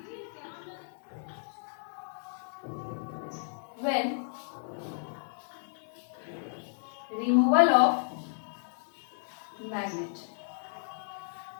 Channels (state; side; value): silent; right; digital silence